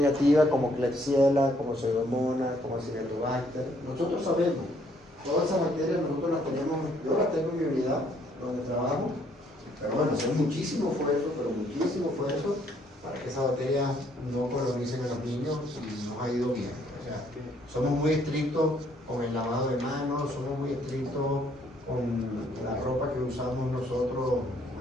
como Klebsiella, como Pseudomonas, como Acinetobacter. Nosotros sabemos, todas esas bacterias nosotros las tenemos, yo las tengo en mi unidad donde trabajo, pero bueno, hacer muchísimo esfuerzo para que esas bacterias no colonicen a los niños y nos ha ido bien. O sea, somos muy estrictos con el lavado de manos, somos muy estrictos con la ropa que usamos nosotros,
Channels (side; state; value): both; normal; correlation 0.67